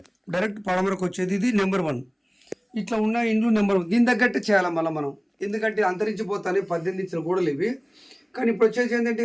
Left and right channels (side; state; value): both; identical; correlation 1.00